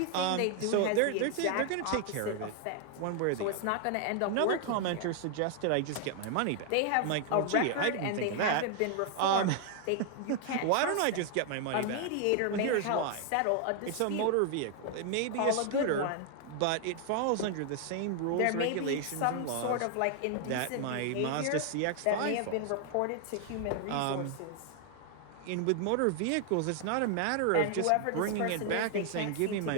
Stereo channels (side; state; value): both; different; correlation 0.00